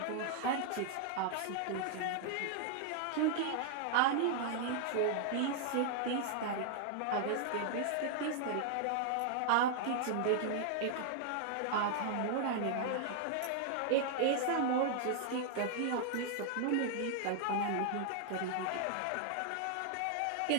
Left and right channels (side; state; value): both; different; correlation 0.00